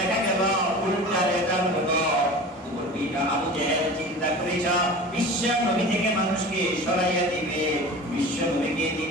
গেল উল্টা রেজাল্ট হলো। আবু জেহেল চিন্তা করেছ বিশ্ব নবী থেকে মানুষকে সরাইয়া দিবে, বিশ্ব নবীকে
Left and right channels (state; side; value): normal; both; correlation 0.36